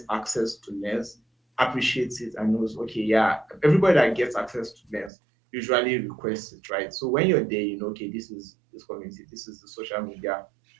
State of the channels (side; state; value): left; drops out; at 5.1 s